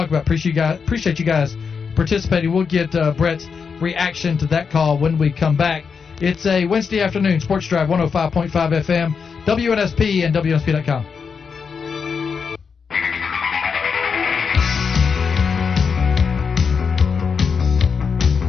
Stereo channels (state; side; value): quieter; right; 5.8 dB